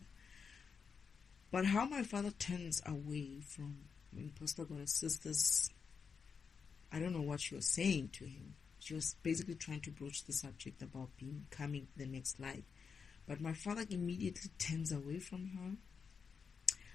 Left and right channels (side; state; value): right; quieter; 5.9 dB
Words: But how my father turns away from Imposter Goddess sisters, I don't know what she was saying to him. She was basically trying to broach the subject about becoming the next light. But my father immediately turns away from her